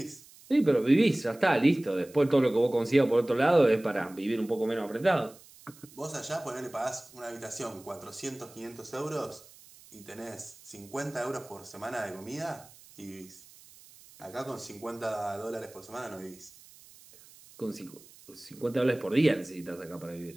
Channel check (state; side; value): noise; right; hiss, 23 dB below the sound